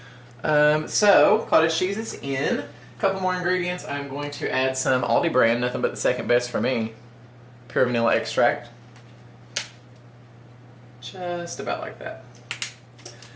So, cottage cheese is in. A couple more ingredients. I'm going to add some Aldi brand, nothing but the second best for me, pure vanilla extract. Just about like that.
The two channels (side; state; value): both; identical; correlation 1.00